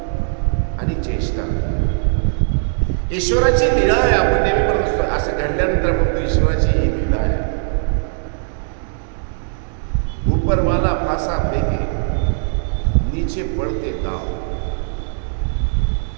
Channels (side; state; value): left; silent; digital silence